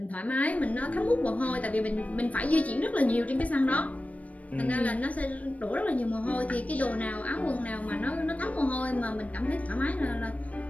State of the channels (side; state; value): right; late; 0.068 ms